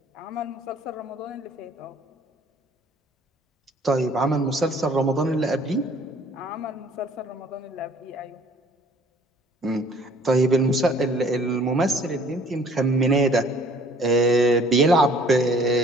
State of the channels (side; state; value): both; normal; correlation 0.55